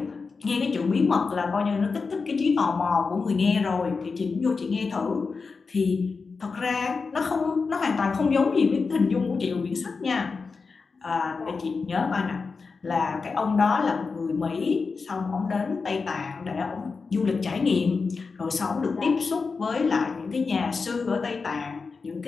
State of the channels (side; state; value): right; quieter; 4.6 dB